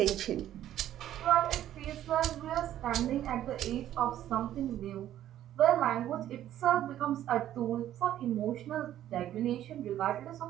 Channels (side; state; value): left; quieter; 12.1 dB